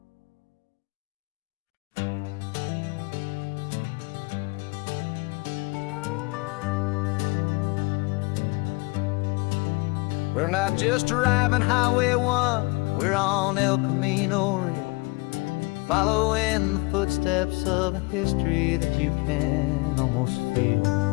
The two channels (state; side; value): quieter; right; 26.8 dB